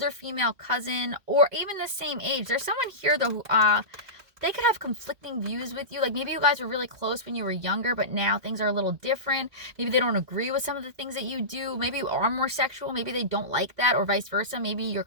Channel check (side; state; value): left; late; 2.1 ms